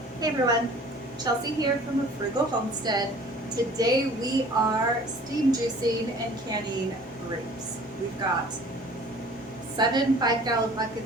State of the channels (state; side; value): normal; both; correlation 0.49